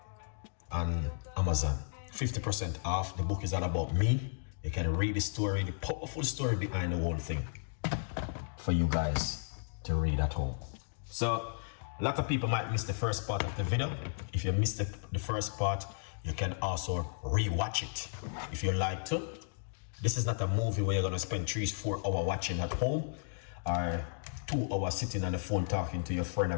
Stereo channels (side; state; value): right; silent; digital silence